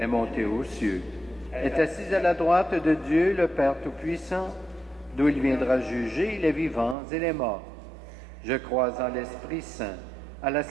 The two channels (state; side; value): drops out; left; at 7.0 s